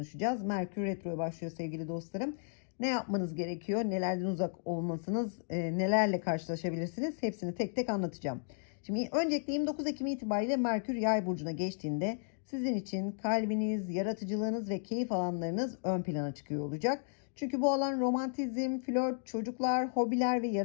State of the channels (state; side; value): silent; right; digital silence